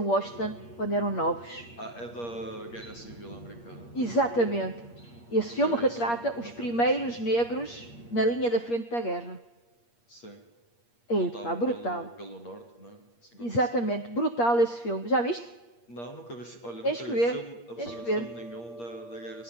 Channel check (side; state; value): right; late; 8.5 ms